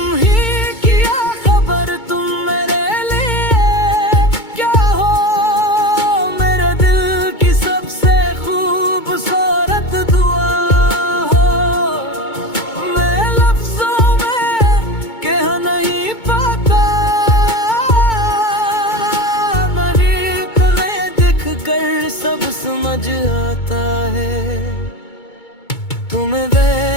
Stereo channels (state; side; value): late; right; 2.2 ms